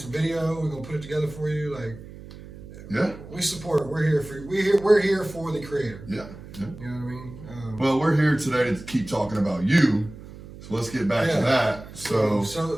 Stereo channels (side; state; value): right; noise; hum, 16 dB below the sound